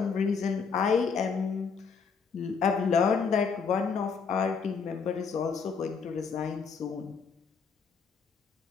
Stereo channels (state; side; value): quieter; right; 5.6 dB